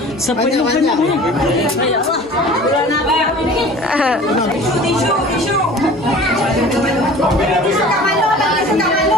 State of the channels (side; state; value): both; normal; correlation 0.44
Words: Sepenuh-penuh ni. Isu. Suka malu, orang